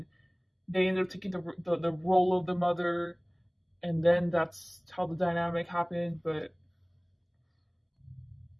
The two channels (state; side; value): identical; both; correlation 1.00